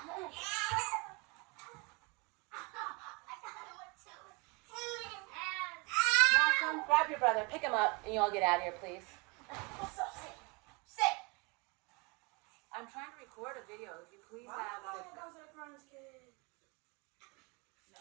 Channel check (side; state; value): left; quieter; 29.3 dB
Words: Malcolm, grab your brother. Pick him up, and you all get out of here, please. Sit. I'm trying to record a video. If you please have the...